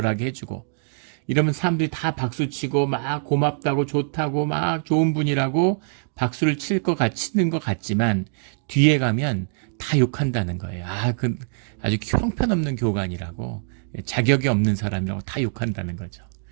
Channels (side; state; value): left; silent; 63 dB below the other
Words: 해주고 이러면 사람들이 다 박수치고 막 고맙다고 좋다고 막 좋은 분이라고 박수를 치는 것 같지만 뒤에 가면 다 욕한다는 거예요. 그 아주 형편없는 교관이라고 자격이 없는 사람이라고 다 욕한다는 거죠.